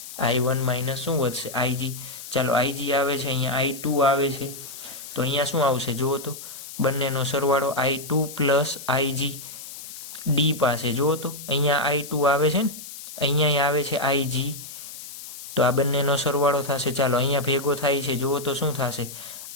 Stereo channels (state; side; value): noise; left; hiss, 12 dB below the sound